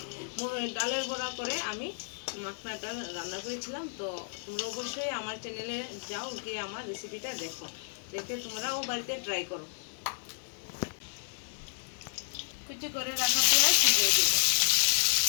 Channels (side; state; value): right; silent; 56 dB below the other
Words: ডালের বড়া করে আমি মাখনাটা রান্না করেছিলাম। তো তোমরা অবশ্যই আমার চ্যানেলে যাও, গিয়ে আমার রেসিপিটা দেখো, দেখে তোমরাও বাড়িতে ট্রাই করো। কুচি করে রাখা পেঁয়াজ দিয়ে দেব।